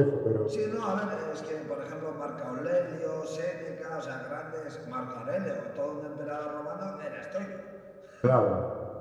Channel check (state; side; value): identical; both; correlation 1.00